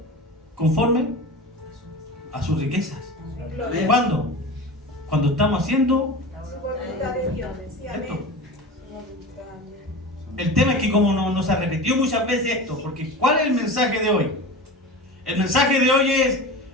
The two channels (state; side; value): normal; both; correlation 0.31